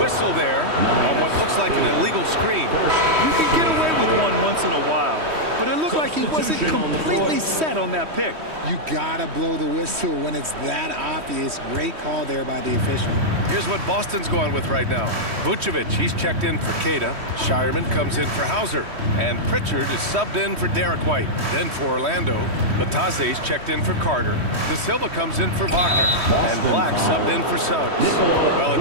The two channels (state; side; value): late; left; 3.1 ms